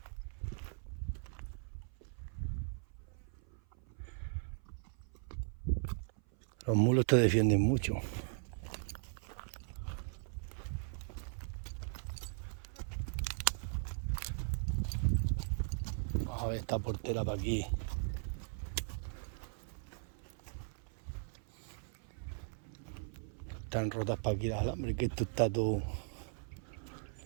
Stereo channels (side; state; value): left; silent; 52 dB below the other